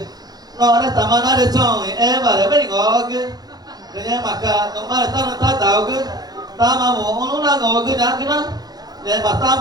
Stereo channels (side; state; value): left; late; 0.19 ms